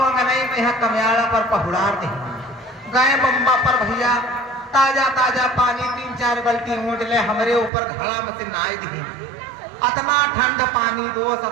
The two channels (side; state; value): left; drops out; at 7.7 s